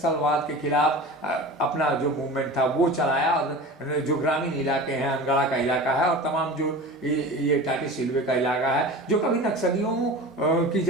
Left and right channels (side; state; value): both; normal; correlation 0.34